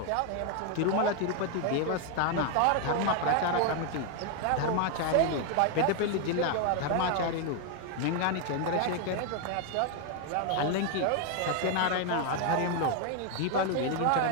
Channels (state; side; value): different; both; correlation 0.01